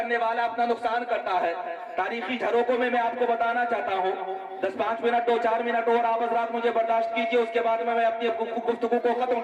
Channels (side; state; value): both; identical; correlation 1.00